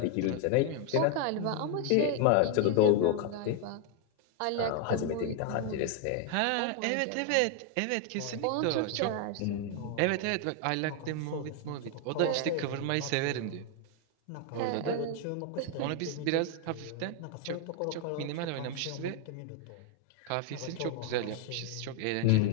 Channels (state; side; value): different; both; correlation 0.01